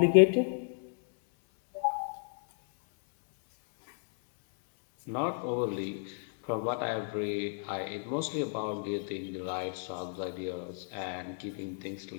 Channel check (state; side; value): silent; right; 56 dB below the other